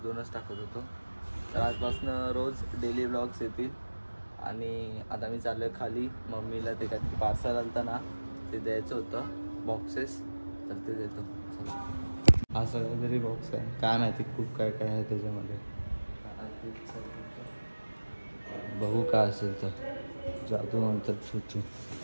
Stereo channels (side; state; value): both; inverted; correlation -1.00